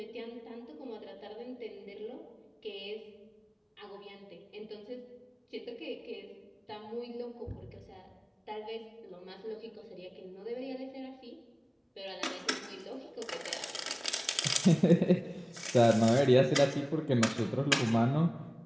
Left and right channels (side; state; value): both; identical; correlation 1.00